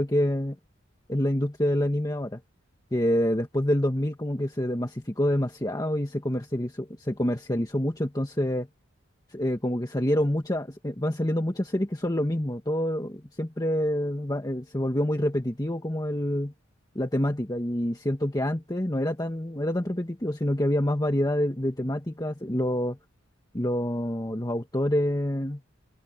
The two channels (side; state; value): both; normal; correlation 0.86